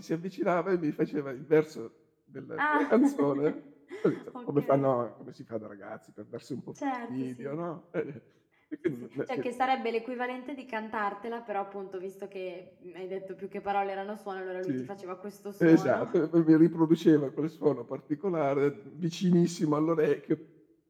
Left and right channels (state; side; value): identical; both; correlation 1.00